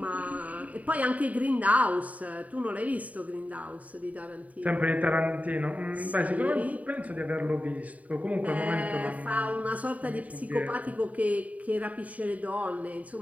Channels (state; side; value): late; left; 0.070 ms